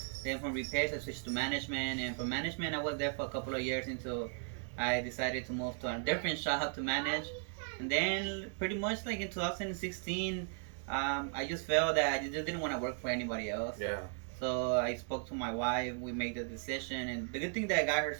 Then from repairs, I switched to management, and from management, I was there for a couple of years until I decided to move to a different shop to manage. And then pretty much like in 2016, I just felt that I just didn't want to work for anybody else. Yeah. So I spoke to my wife. We made the decision, and the good thing that I got her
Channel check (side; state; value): left; silent; 53 dB below the other